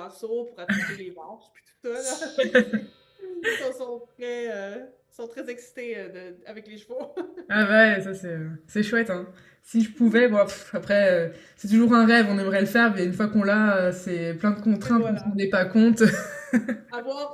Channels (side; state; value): both; identical; correlation 1.00